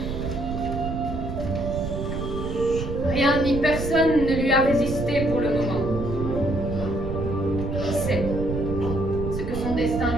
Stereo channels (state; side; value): noise; right; rumble, 5 dB below the sound